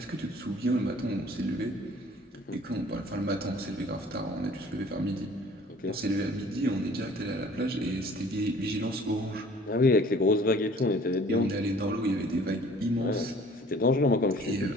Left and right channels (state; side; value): normal; both; correlation 0.52